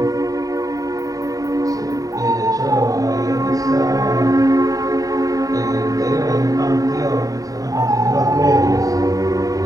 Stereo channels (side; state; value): left; late; 0.17 ms